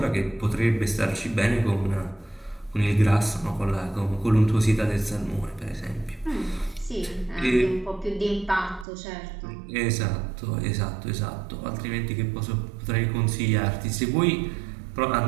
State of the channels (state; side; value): drops out; left; at 8.8 s